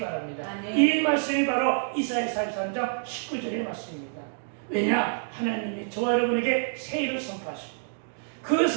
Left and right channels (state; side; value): silent; left; digital silence